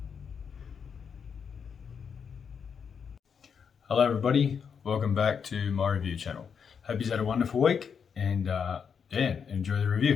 Hello everybody, welcome back to my review channel. Hope you've had a wonderful week and enjoy the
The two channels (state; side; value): quieter; right; 6.7 dB